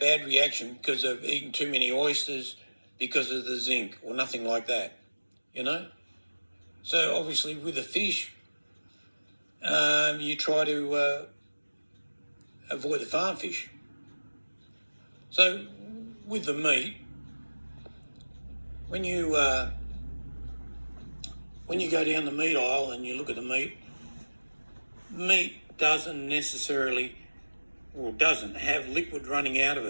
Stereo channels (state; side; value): inverted; both; correlation -1.00